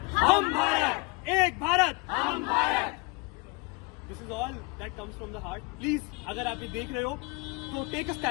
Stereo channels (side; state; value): right; quieter; 27.0 dB